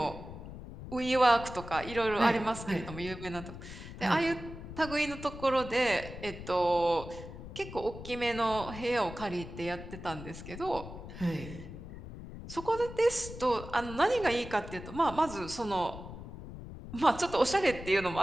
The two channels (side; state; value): left; noise; rumble, 12 dB below the sound